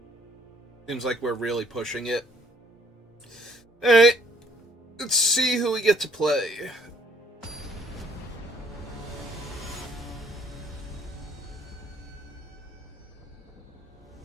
seems like we're really pushing it. Alright, let's see who we get to play.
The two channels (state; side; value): normal; both; correlation 0.63